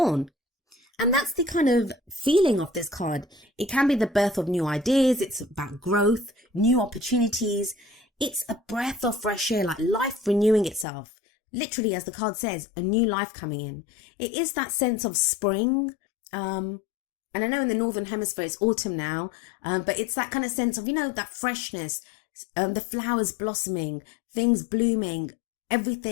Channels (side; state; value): right; drops out; at 10.9 s